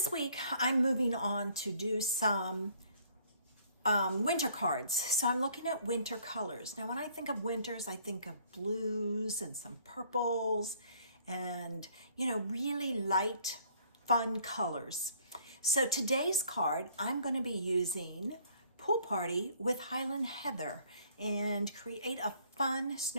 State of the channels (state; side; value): inverted; both; correlation -0.60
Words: week I'm moving on to do some winter cards. So I'm looking at winter colors. Now when I think of winters, I think of blues and some purples and really light, fun colors. So today's card, I'm going to be using Pool Party with Highland Heather and create a fun